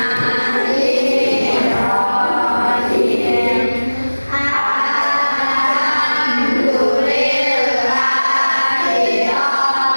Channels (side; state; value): both; inverted; correlation -1.00